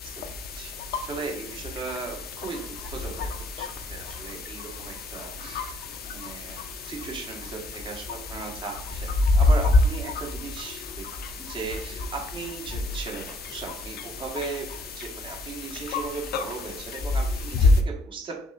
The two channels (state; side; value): normal; both; correlation 0.65